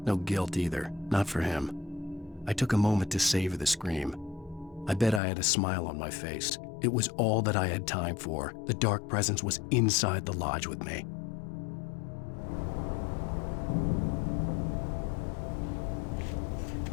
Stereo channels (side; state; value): right; drops out; at 5.2 s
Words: no guilt either, not for him. I took a moment to savor the scream. I bet I had a smile on my face. It was all that I had time for. The dark presence was inside the lodge with me.